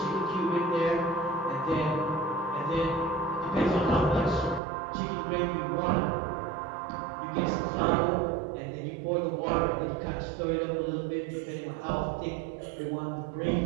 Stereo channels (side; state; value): left; drops out; at 4.6 s